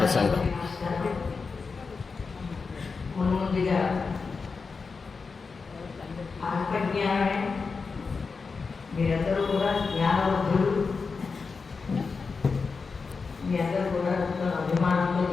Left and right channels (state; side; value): quieter; right; 4.8 dB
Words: ముందుగా ఆత్మజ్ఞానమే, మీరందరూ కూడా జ్ఞానవంతులు, మీ అందరూ కూడా అభిమానంతో